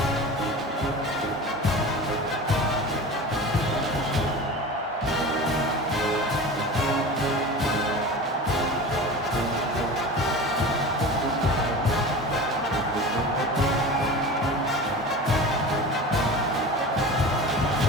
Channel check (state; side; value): normal; both; correlation 0.33